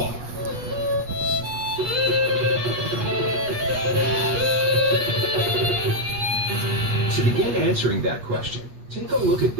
To begin answering that question, take a look at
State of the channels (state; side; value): late; left; 8.2 ms